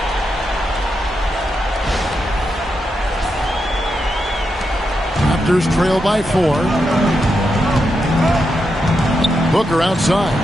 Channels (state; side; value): normal; both; correlation 0.85